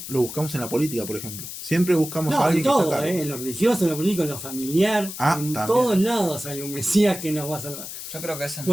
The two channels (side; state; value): left; noise; hiss, 9 dB below the sound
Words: lo buscamos en la política, por ejemplo. Siempre buscamos a No, en alguien que está a todo, cargo. en lo religioso, en lo político, en lo familiar, en También. todos lados hay un Mesías que nos va a salvar. Yo creo que ese es